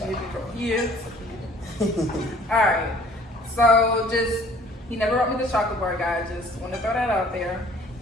bar. Yeah. Alright, So just, he never wrote me the chocolate bar, guys. Just want to throw that out there.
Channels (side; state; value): both; normal; correlation 0.54